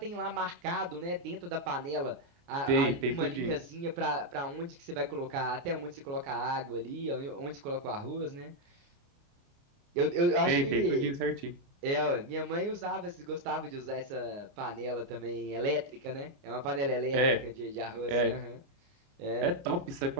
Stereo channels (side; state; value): left; late; 29 ms